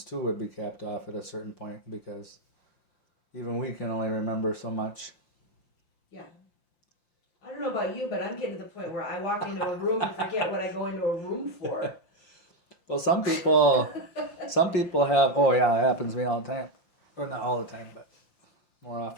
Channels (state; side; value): late; right; 5.8 ms